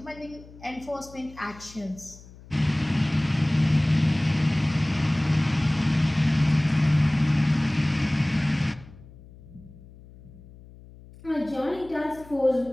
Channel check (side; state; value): left; noise; hum, 21 dB below the sound